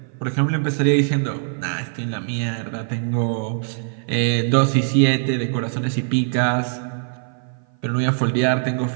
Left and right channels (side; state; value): left; silent; 55 dB below the other